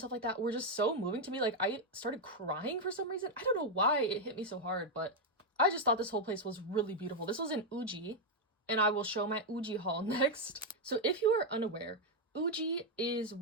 like that were just so moving to me. Like I started crying for some reason. I don't know why it hit me so hard, but I just thought this whole place was really beautiful. This was in Uji, and I will show my Uji haul next. So if you are unaware, Uji is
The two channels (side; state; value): both; normal; correlation 0.02